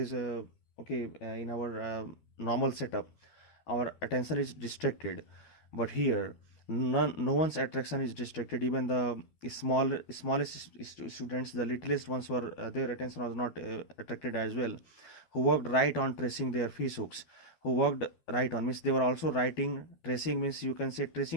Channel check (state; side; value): late; right; 12 ms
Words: in our normal setup, our attention is distracted. But here, no one's attention is distracted. Even the smallest students, the littlest ones, were their attention was not attracted as well. Who worked right on tracing their fish hooks. Who worked right on, means they were also writing. Tracing means, you can say